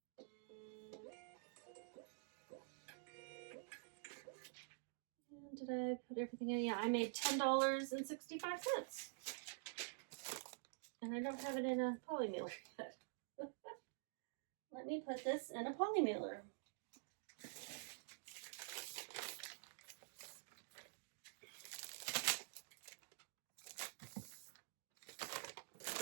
And did I put everything in? Yeah, I made $10.65. And I don't have it in a poly mailer yet. Let me put this in a poly mailer.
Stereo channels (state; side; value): silent; left; digital silence